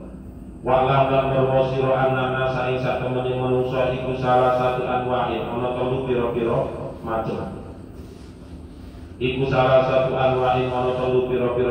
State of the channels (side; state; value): both; identical; correlation 1.00